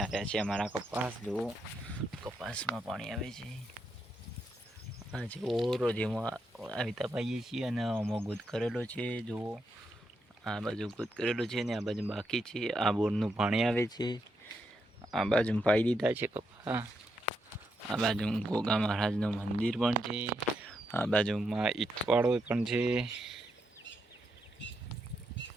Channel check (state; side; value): normal; both; correlation 0.81